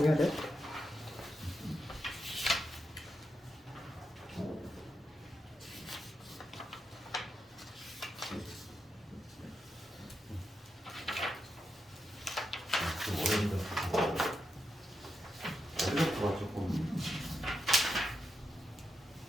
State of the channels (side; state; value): both; normal; correlation 0.86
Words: 해야 돼. 어려워서 조금